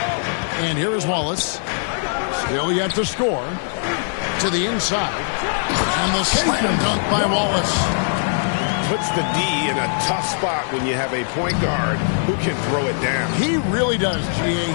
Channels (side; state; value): right; silent; digital silence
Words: And here is Wallace. Still yet to score. To the inside. And the slam dunk by Wallace. Puts the D in a tough spot when you have a point guard who can throw it down. He really does, G.A.